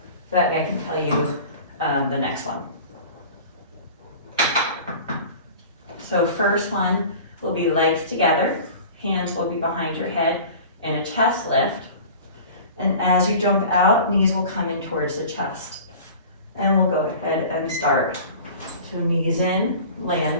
So that I can tell you the next one. So first one will be legs together. Hands will be behind your head in a chest lift. And as you jump out, knees will come in towards the chest. And we'll go ahead and start. So knees in,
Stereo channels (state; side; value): inverted; both; correlation -0.41